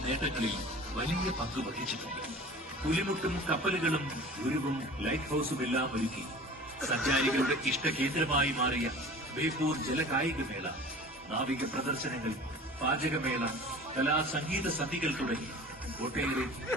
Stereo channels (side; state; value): both; normal; correlation 0.41